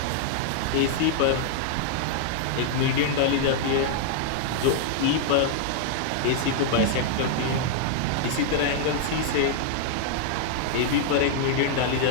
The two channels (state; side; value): different; both; correlation -0.01